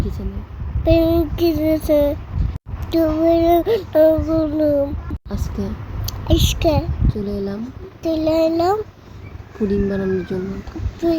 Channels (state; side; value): identical; both; correlation 1.00